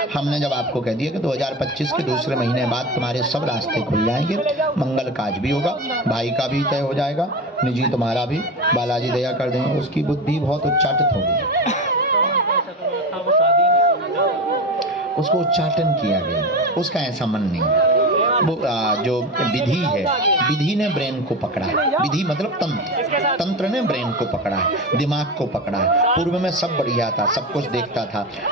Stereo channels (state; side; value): normal; both; correlation 0.24